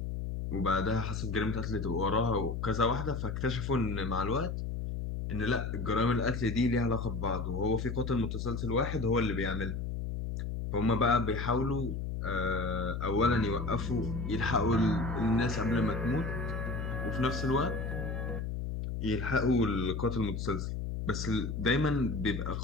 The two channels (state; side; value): noise; left; hum, 3 dB below the sound